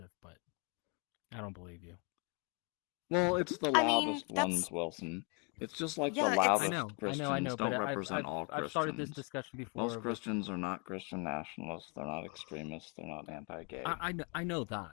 but I don't believe you. Well, it's the loudest ones, Wilson. It's just like the loudest Christians don't represent all Christians. I've started this discussion before. Most Christians are not Christian nationalists. They're not extremists. They're not anti-gay. I know that.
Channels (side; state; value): right; quieter; 33.7 dB